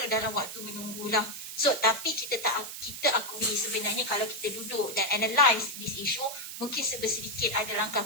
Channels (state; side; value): noise; right; hiss, 9 dB below the sound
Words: dalam waktu menunggulah. So tapi kita akui sebenarnya kalau kita duduk dan analyse this issue, mungkin sedikit ada